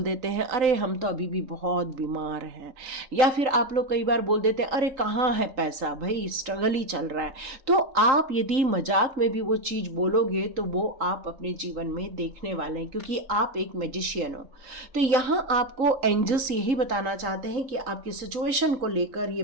देते हैं अरे हम तो अभी भी बहुत बीमार हैं, या फिर आप लोग कई बार बोल देते हैं अरे कहाँ है पैसा, भाई स्ट्रगल ही चल रहा है। तो आप यदि मजाक में भी वो चीज़ बोलोगे तो वो आप अपने जीवन में देखने वाले हैं, क्योंकि आप एक मैजिशियन हो। तो यहाँ आपको एंजल्स यही बताना चाहते हैं कि आपकी सिचुएशन को लेकर ये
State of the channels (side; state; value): left; late; 3.8 ms